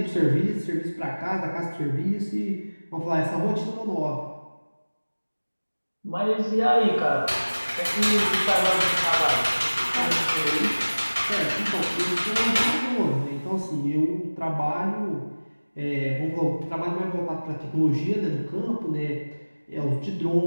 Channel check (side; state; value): both; inverted; correlation -1.00